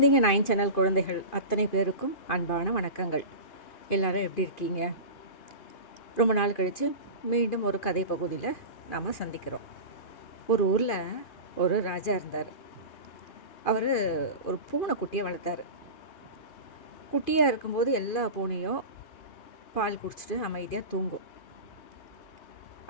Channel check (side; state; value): right; late; 2.5 ms